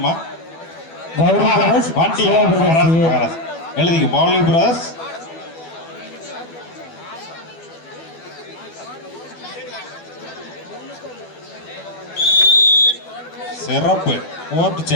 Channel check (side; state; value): right; late; 12 ms